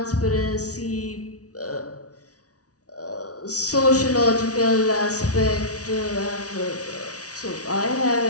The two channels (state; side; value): late; right; 0.67 ms